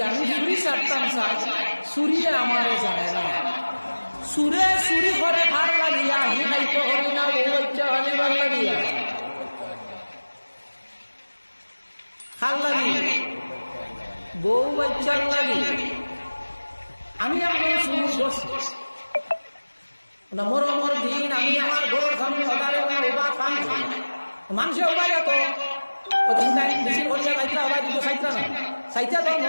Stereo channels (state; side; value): inverted; both; correlation -1.00